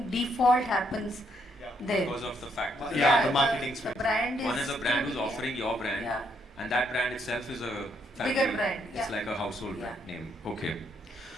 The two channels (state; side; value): normal; both; correlation 0.74